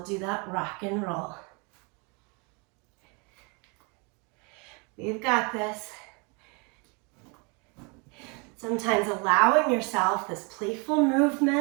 do that rock and roll. We've got this. Sometimes allowing yourself this playful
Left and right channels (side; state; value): left; quieter; 31.7 dB